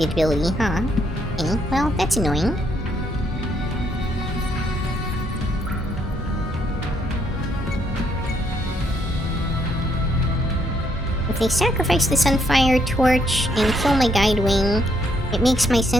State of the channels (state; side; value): normal; both; correlation 0.72